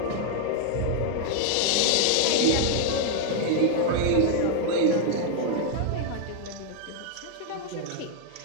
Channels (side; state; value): both; different; correlation 0.00